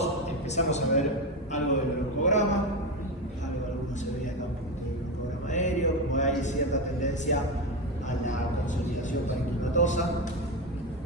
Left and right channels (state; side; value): normal; both; correlation 0.15